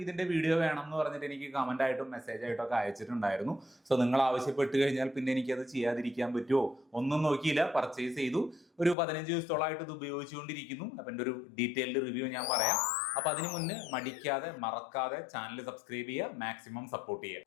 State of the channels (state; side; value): drops out; right; at 9.0 s